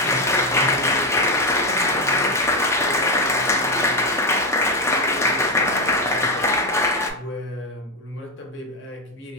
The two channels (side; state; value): both; normal; correlation 0.07